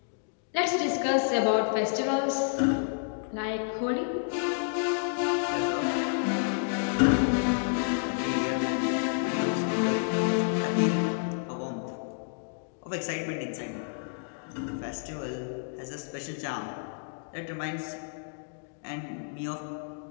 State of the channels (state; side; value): silent; right; digital silence